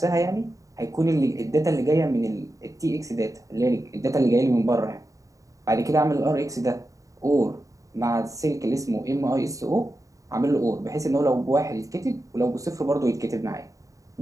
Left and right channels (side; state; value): left; late; 0.16 ms